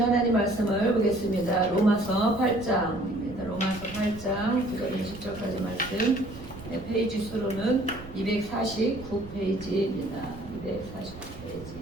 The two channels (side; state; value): right; noise; rumble, 15 dB below the sound